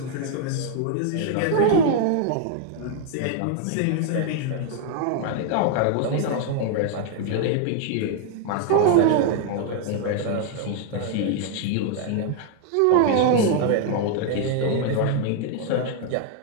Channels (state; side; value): different; both; correlation 0.00